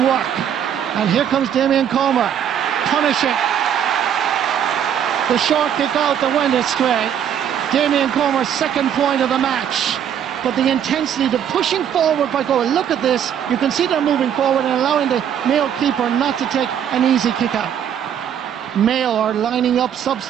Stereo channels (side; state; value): left; quieter; 9.1 dB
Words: And here comes Damien Comer, punishing the short kick out that went astray. Damien Comer's second point of the match. But the intensity, the pushing forward by Galway. Look at this. You can see they're moving forward and allowing the Mayo keeper not to take an easy kick out. Mayo are lining up